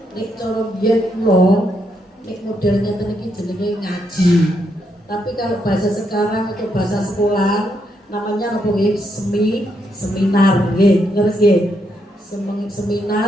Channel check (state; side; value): normal; both; correlation 0.78